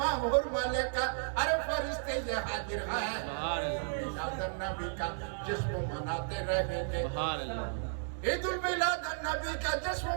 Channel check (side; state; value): left; silent; digital silence